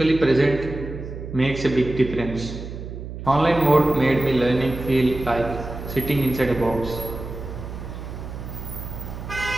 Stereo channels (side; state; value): right; noise; hum, 9 dB below the sound